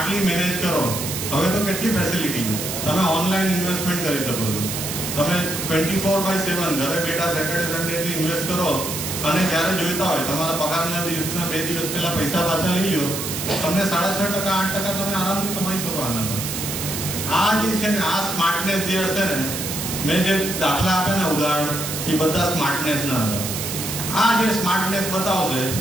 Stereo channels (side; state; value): right; noise; hiss, 4 dB below the sound